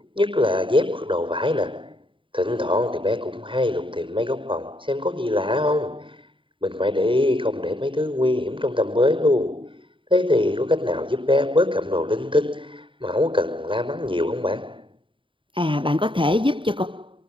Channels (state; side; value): late; left; 0.25 ms